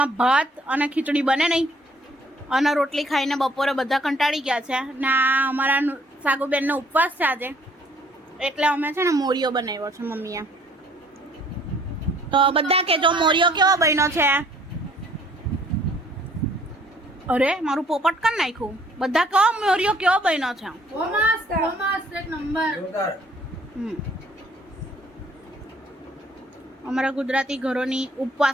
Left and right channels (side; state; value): both; normal; correlation 0.60